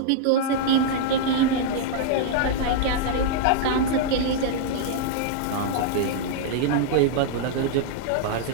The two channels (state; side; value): different; both; correlation -0.01